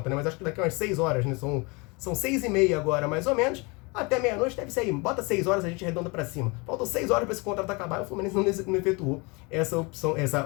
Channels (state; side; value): quieter; right; 28.4 dB